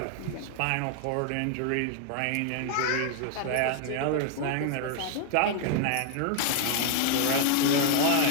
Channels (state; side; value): different; both; correlation 0.00